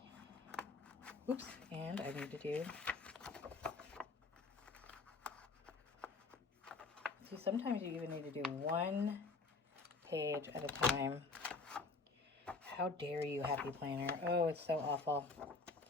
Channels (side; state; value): right; quieter; 3.8 dB